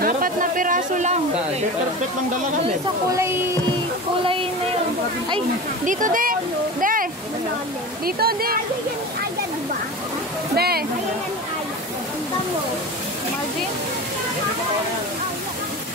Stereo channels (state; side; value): normal; both; correlation 0.30